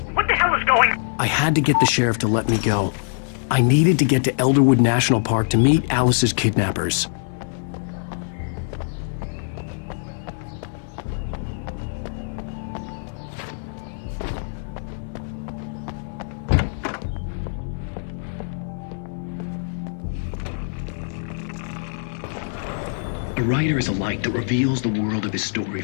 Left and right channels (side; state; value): right; silent; 63 dB below the other